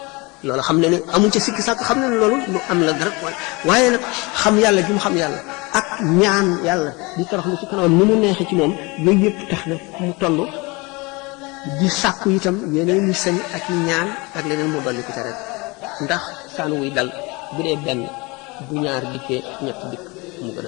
loolu xam ne ne amuñ ca sikki sàkk xam ne ne loolu lu am la dara waaye nag xam yàlla gi mu xam yàlla ak ñaan yàlla di toroxlu ci kanamam ni mu neexee ci moom yooyu yëpp tax na mu toll di sàkku itam yeneen ñi sañ ak ñaan ak leneen mu dolli ko ca rek ndax saan wuy dal bu dee benn bu ñaar dikkee ñett dikk mu gën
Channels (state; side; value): quieter; right; 26.1 dB